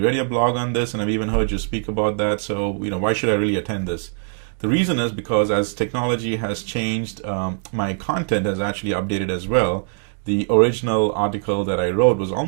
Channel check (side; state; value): left; silent; digital silence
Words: your blog on this, and I've even heard you speak about that. So, why should I really attend this? The reason is because as technology has changed, my content has actually updated as well. The original article that I wrote was